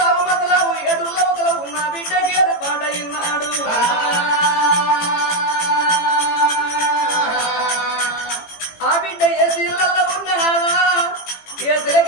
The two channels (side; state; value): right; late; 18 ms